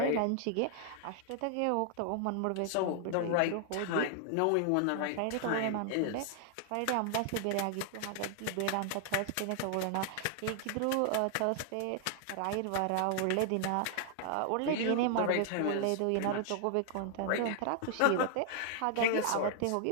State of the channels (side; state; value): both; different; correlation 0.00